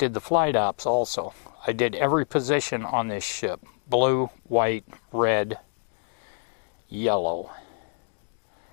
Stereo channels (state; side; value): silent; right; digital silence